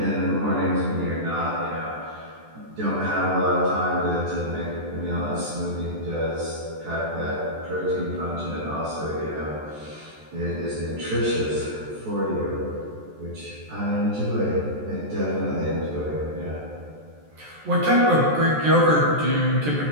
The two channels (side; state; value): left; late; 14 ms